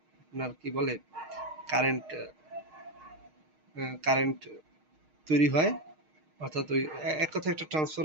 আপনার কি বলে কারেন্ট, কারেন্ট তৈরি হয়। অর্থাৎ ওই এক কথায় একটা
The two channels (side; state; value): left; late; 6.5 ms